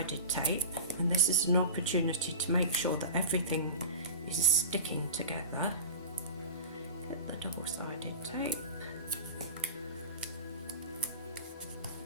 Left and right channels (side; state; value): both; inverted; correlation -0.33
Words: tape, and this is an opportunity to make sure that everything is sticking together. Get the double-sided tape,